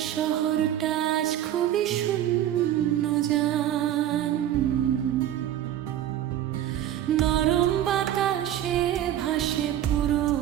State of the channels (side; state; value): left; quieter; 11.7 dB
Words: শহরটা আজ খুবই শূন্য জান। নরম বাতাসে ভাসে